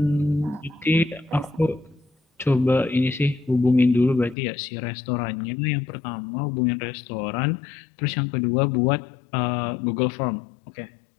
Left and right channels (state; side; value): drops out; right; at 4.4 s